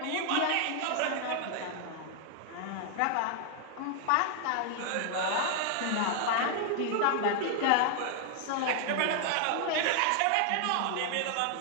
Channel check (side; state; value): both; different; correlation 0.00